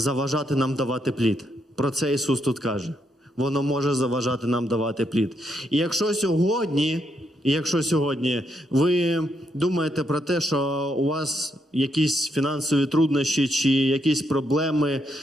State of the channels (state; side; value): normal; both; correlation 0.78